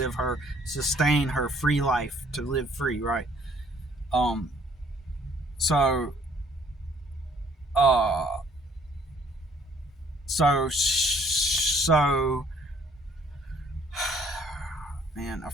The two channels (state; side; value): normal; both; correlation 0.61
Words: sustain her free life, to live free, right? So man, I